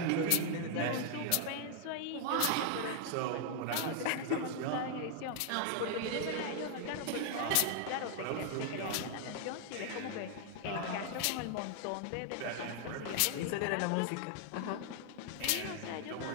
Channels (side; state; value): both; different; correlation 0.00